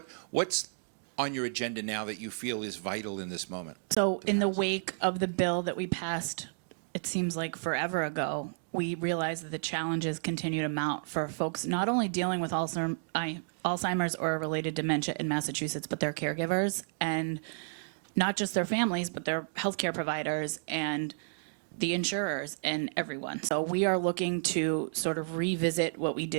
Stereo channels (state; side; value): silent; left; digital silence